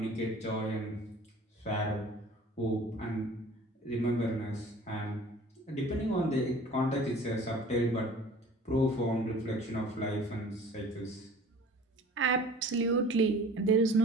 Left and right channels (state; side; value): normal; both; correlation 0.46